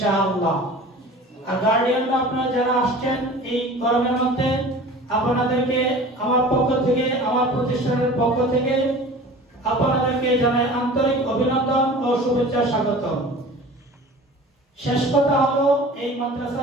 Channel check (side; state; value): both; normal; correlation 0.41